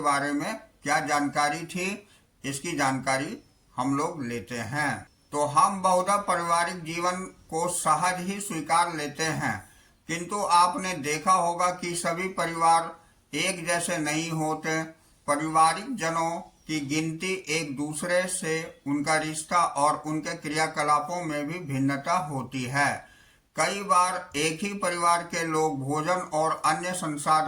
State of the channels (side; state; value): both; identical; correlation 1.00